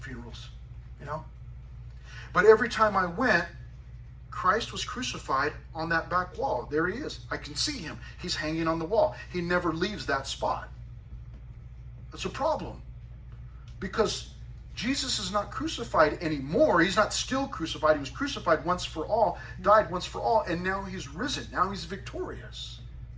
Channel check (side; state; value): both; identical; correlation 1.00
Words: funerals, But every time I went, Christ was crucified on that back wall. There he is. I can see him. He's hanging on the wall. He never leaves that spot. That's a problem, because Jesus is not crucified anymore. He's not still crucified. He was crucified once for all, died once for all, and now he's risen. Now he's victorious.